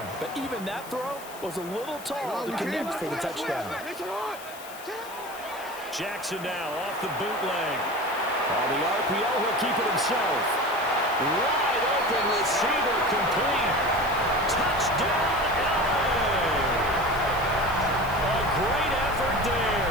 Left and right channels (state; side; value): noise; left; hiss, 17 dB below the sound